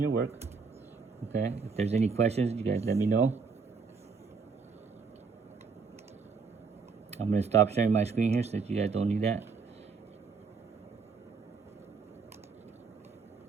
work. Okay, if there's any questions, you guys let me know. I'm going to stop sharing my screen here since you guys don't need that.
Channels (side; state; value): left; quieter; 5.0 dB